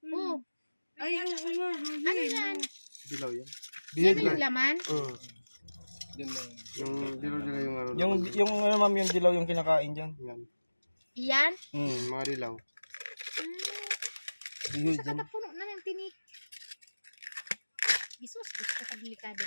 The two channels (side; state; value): both; inverted; correlation -1.00